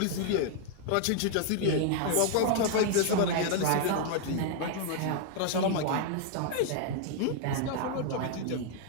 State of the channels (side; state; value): both; different; correlation 0.00